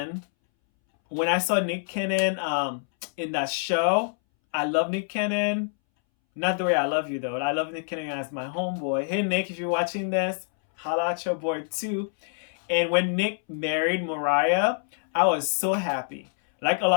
when I saw Nick Cannon in that show, I love Nick Cannon. Not the way I love you though. I love Nick Cannon as my homeboy. Hey Nick, if you're watching this, holla at your boy too. And when Nick married Mariah, I was so happy. Like a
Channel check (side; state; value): right; silent; 61 dB below the other